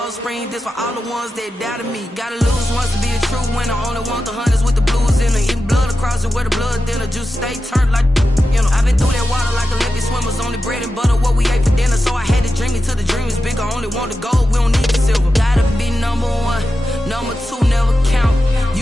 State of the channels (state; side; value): normal; both; correlation 0.91